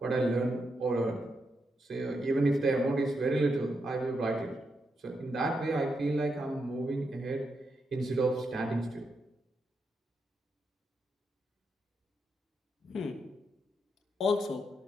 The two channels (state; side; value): normal; both; correlation 0.83